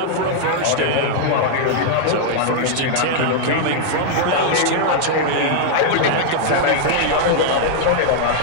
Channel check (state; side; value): different; both; correlation -0.01